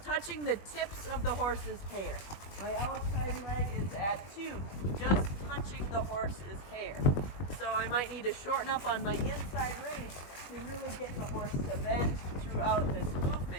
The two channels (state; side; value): late; right; 20 ms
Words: touching the tips of the horse's hair. My outside leg is at 2, just touching the horse's hair. So I might need to shorten up on my inside rein to really get the horse to bend throughout this